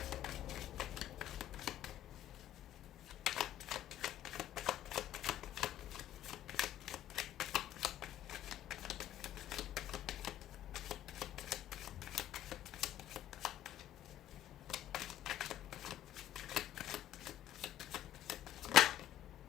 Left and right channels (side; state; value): right; quieter; 12.3 dB